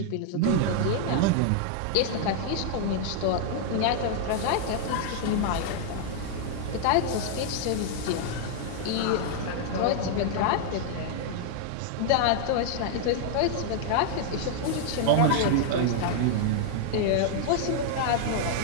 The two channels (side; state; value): both; different; correlation 0.00